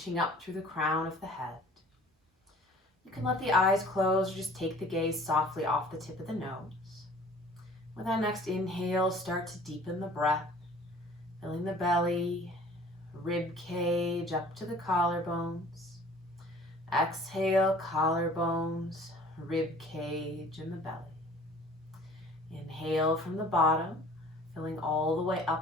up through the crown of the head. You can let the eyes close or just take the gaze softly off the tip of the nose. With our next inhale, start to deepen the breath, filling the belly, rib cage up to the collarbones. Exhale, collarbones, rib cage, and the belly. Inhale from the bottom, filling all the way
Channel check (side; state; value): both; normal; correlation 0.50